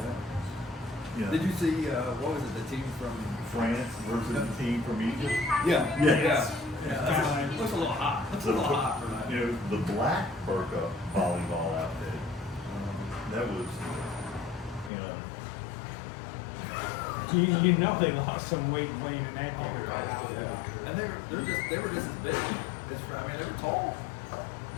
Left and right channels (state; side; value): drops out; right; at 14.9 s